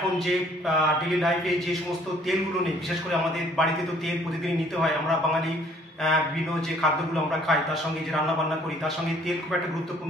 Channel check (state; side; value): normal; both; correlation 0.59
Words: যে ডেলি লাইফে যে সমস্ত তেলগুলো নেই, বিশেষ করে আমাদের বাড়িতে তো তেল প্রতিদিনই নিতে হয়। আমরা বাঙালি বিভিন্ন যে খাদ্যগুলো আমরা খাই, তার সঙ্গে যে রান্না বান্না করি, তার সঙ্গে তেল খুব একটা